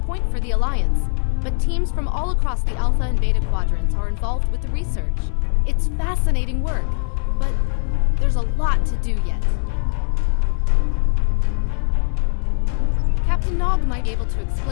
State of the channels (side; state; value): right; silent; 64 dB below the other